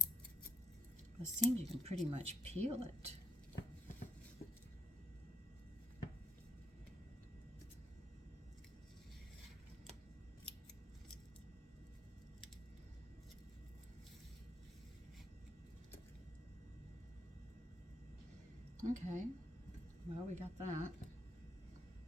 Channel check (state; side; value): normal; both; correlation 0.69